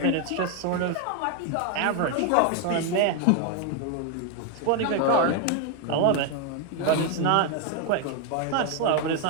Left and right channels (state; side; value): different; both; correlation 0.01